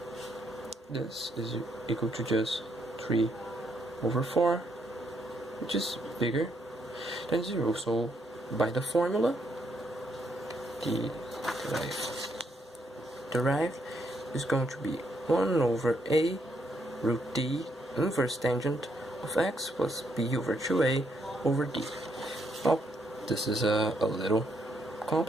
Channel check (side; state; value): both; normal; correlation 0.75